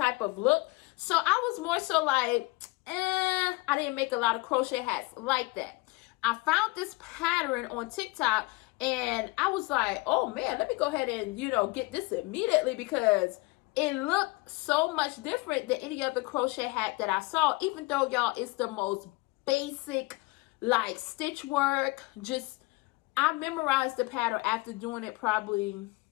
of look. So I was more so like, I didn't make a lot of crochet hats like that. I found this pattern on TikTok, and I was like, oh man, let me go ahead and, you know, get this immediately, because it looked so much different than any other crochet hat that I saw, even though, y'all, it's the most basic, like, stitch work. Just, I memorized the pattern after doing it probably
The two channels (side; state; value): right; quieter; 24.2 dB